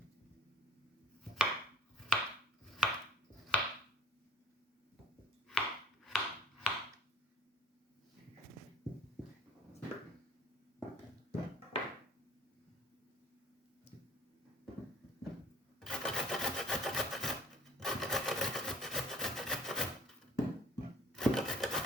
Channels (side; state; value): both; normal; correlation 0.47